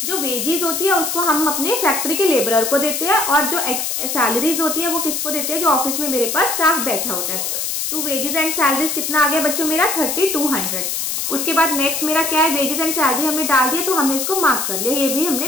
जो वेजेस होती है उसको हम अपने फैक्ट्री के लेबरर को देते हैं, और जो सैलरीज होती है वो किसको देते हैं, जो ऑफिस में मेरे पास स्टाफ बैठा होता है। तो वेजेस एंड सैलरीज कितना आ गया बच्चों मेरा 3200। उसके बाद नेक्स्ट मेरा क्या है, वेजेस एंड सैलरी हमने डाल दिया, तो हमने इसको मार्क कर लिया, ये भी हमने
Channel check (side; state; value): left; noise; hiss, 1 dB below the sound